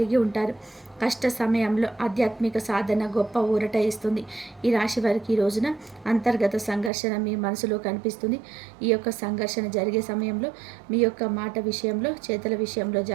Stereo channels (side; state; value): left; drops out; at 6.9 s